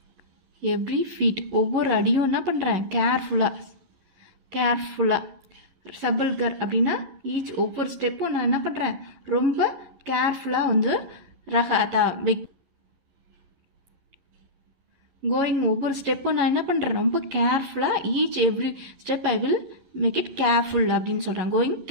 every feet ஒவ்வொரு அடியும் என்ன பண்ணுறேன் கேர்ஃபுல்லாக சபல்கர் அப்படின்னா ஈச் ஒவ்வொரு ஸ்டெப்பும் நான் என்ன பண்ணுறேன் ரொம்ப கேர்ஃபுல்லாக வந்து ரஹாதா கோயிங் ஒவ்வொரு ஸ்டெப்பும் நான் என்ன பண்ணுறேன் ரொம்ப கேர்ஃபுல்லாக each every step I will make it careful அப்படின்னு சொல்கிறாங்க கோயிங்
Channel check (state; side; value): late; left; 11 ms